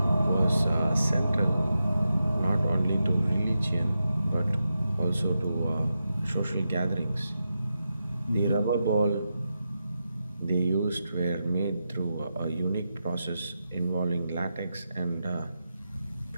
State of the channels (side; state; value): both; inverted; correlation -0.88